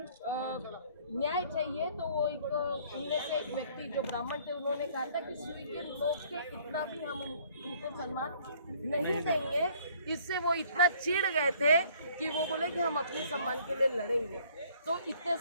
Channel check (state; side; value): inverted; both; correlation -0.59